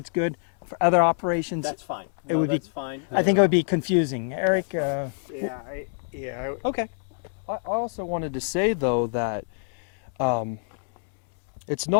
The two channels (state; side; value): silent; right; 59 dB below the other